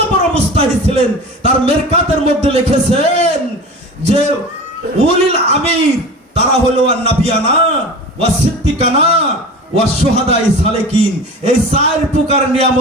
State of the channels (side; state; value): both; normal; correlation 0.34